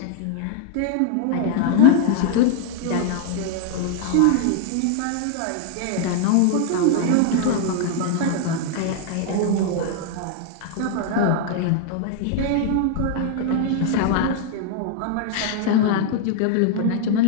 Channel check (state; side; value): different; both; correlation 0.00